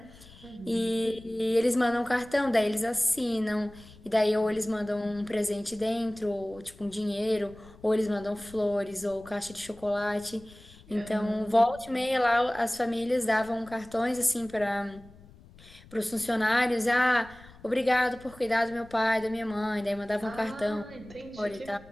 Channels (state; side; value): noise; left; rumble, 22 dB below the sound